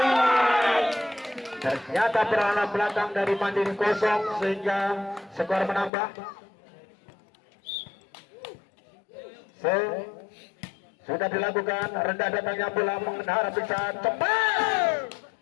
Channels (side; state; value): right; drops out; at 5.9 s